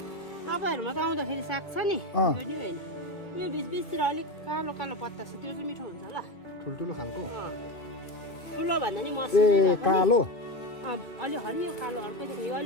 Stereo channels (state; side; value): late; right; 2.5 ms